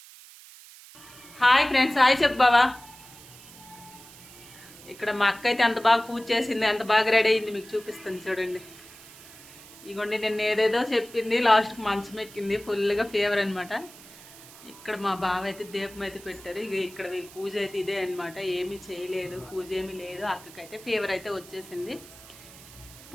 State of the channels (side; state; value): right; noise; hiss, 19 dB below the sound